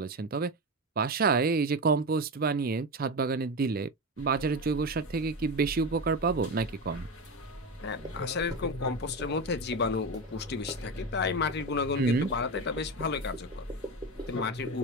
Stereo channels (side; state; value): both; normal; correlation 0.19